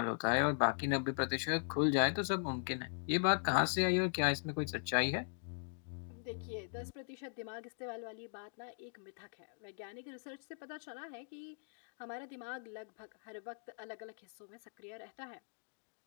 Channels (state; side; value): silent; right; digital silence